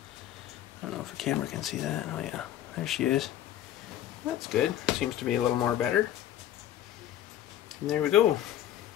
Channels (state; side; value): quieter; right; 12.2 dB